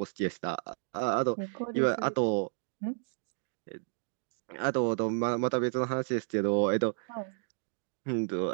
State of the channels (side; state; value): left; silent; digital silence